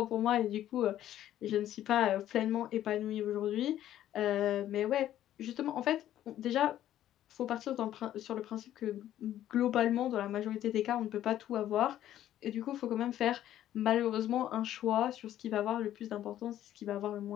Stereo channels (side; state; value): right; quieter; 12.2 dB